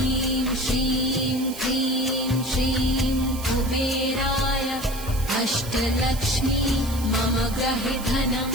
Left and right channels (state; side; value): noise; right; hiss, 13 dB below the sound